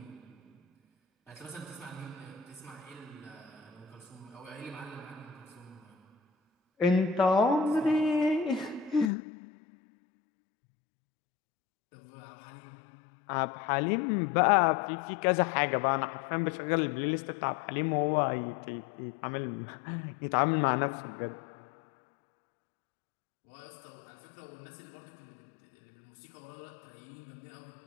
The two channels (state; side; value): drops out; right; at 9.1 s